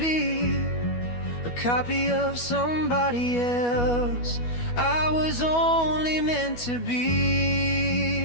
a copy of somebody else. I was only meant to be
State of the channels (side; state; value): right; late; 12 ms